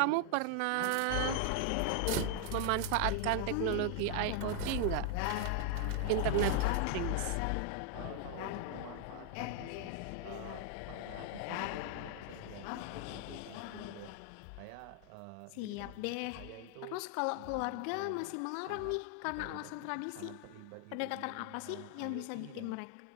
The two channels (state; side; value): different; both; correlation 0.00